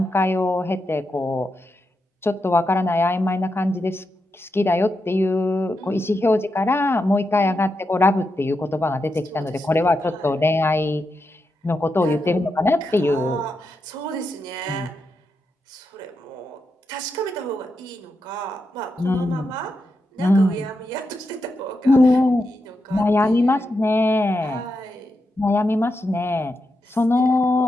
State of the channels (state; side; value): normal; both; correlation 0.86